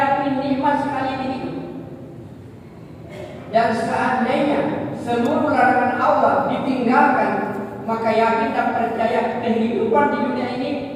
nikmat sekali ini. Dan seandainya seluruh larangan Allah ditinggalkan, maka yakin dan percaya kehidupan di dunia ini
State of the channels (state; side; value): identical; both; correlation 1.00